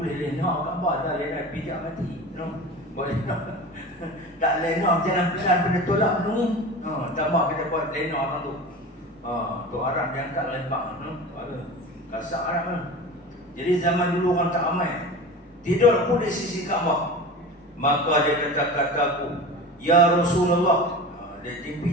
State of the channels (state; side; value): normal; both; correlation 0.33